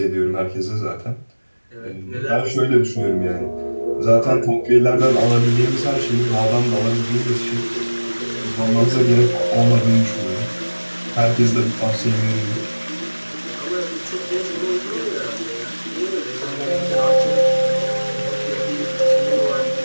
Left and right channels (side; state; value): both; inverted; correlation -1.00